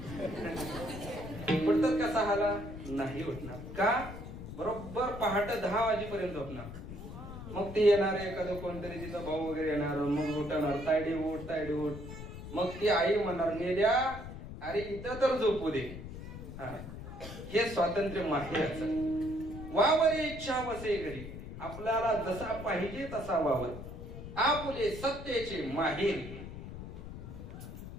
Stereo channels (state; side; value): noise; left; rumble, 10 dB below the sound